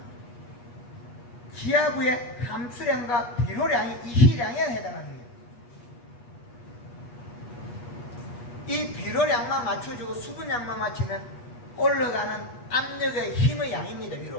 지하부의 함수량과 비료량이 이시량에 해당하는 거예요. 이 비료량만 맞춰주고 수분량만 맞추면 올라가는 압력의 힘의 양입니다.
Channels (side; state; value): right; late; 8.3 ms